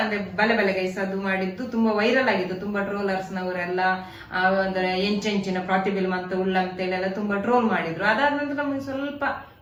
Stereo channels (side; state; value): both; identical; correlation 1.00